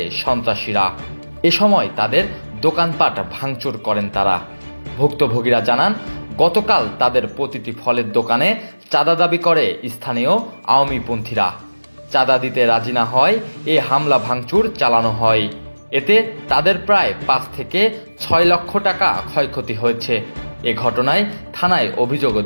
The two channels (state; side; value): inverted; both; correlation -1.00